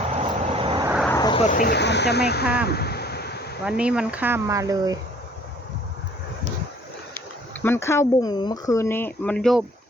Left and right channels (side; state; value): both; normal; correlation 0.55